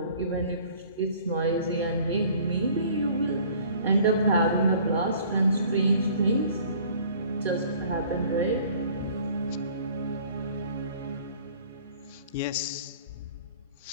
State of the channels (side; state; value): both; inverted; correlation -0.52